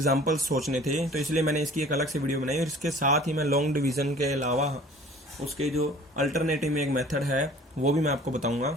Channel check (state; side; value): normal; both; correlation 0.48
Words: सोचने थे। तो इसलिए मैंने इसकी एक अलग से वीडियो बनाई और इसके साथ ही मैं लॉन्ग डिवीजन के अलावा उसके जो अल्टरनेटिव में एक मेथड है वो भी मैं आपको बताऊंगा।